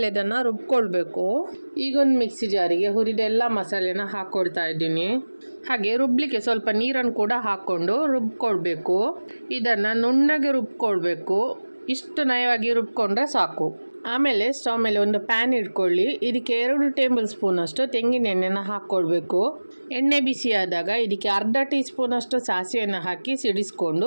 ಇದನ್ನು ರುಬ್ಕೊಳ್ಬೇಕು. ಈಗ ಒಂದು ಮಿಕ್ಸಿ ಜಾರಿಗೆ ಹುರಿದ ಎಲ್ಲ ಮಸಾಲೆನ ಹಾಕ್ಕೊಳ್ತಾ ಇದ್ದೀನಿ. ಹಾಗೆ ರುಬ್ಲಿಕ್ಕೆ ಸ್ವಲ್ಪ ನೀರನ್ನು ಕೂಡ ಹಾಕ್ಕೊಂಡು ರುಬ್ಕೊಳ್ಬೇಕು. ಇದನ್ನು ನುಣ್ಣಗೆ ರುಬ್ಕೊಳ್ಬೇಕು. ಇಷ್ಟು ನಯವಾಗಿ ರುಬ್ಕೊಂಡ್ರೆ ಸಾಕು. ಆಮೇಲೆ ಸ್ಟವ್ ಮೇಲೆ ಒಂದು ಪ್ಯಾನ್ ಇಟ್ಕೊಳ್ಳಿ. ಇದಕ್ಕೆ 2 ಟೇಬಲ್ ಸ್ಪೂನ್ ಅಷ್ಟು ತೆಂಗಿನ ಎಣ್ಣೆನ ಹಾಕ್ಕೊಳ್ಬೇಕು. ಎಣ್ಣೆ ಬಿಸಿ ಆದಾಗ ಇದಕ್ಕೆ ಅರ್ಧ ಟೀ ಸ್ಪೂನ್ ಅಷ್ಟು ಸಾಸಿವೆಯನ್ನು ಹಾಕಿ ಸಿಡಿಸ್ಕೊಂಡು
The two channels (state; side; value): inverted; both; correlation -1.00